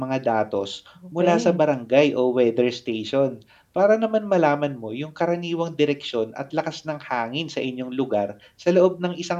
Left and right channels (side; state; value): both; identical; correlation 1.00